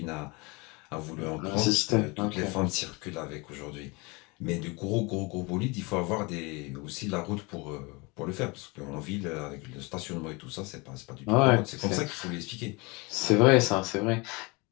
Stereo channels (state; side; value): quieter; right; 27.0 dB